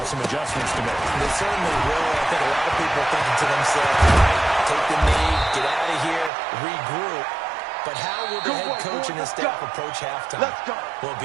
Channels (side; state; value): left; drops out; at 6.3 s